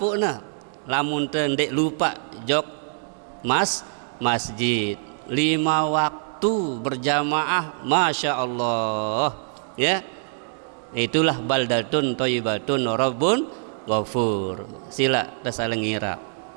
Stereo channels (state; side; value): silent; left; digital silence